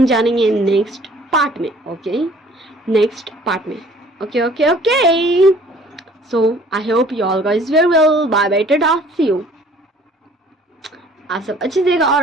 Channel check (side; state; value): both; normal; correlation 0.54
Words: जानेंगे नेक्स्ट पार्ट में, ओके, नेक्स्ट पार्ट में। Okay okay okay, so I hope you all guys very well, bye bye, tata, see you. आप सब अच्छे से रहिएगा